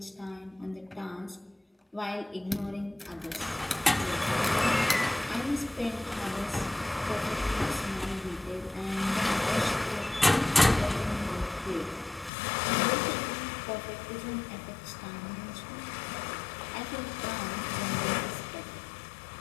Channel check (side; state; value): right; drops out; at 12.3 s